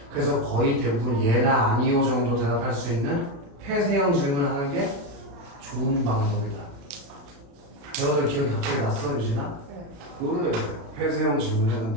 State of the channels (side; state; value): left; late; 36 ms